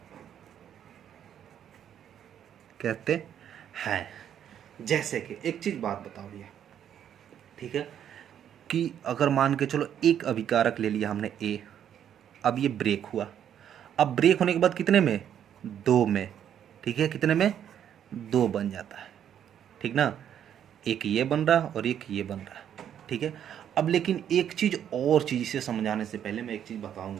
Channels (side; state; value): left; quieter; 9.6 dB